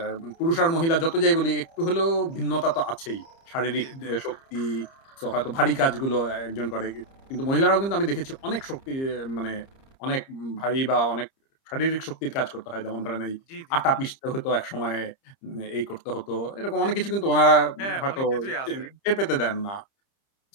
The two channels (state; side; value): late; right; 30 ms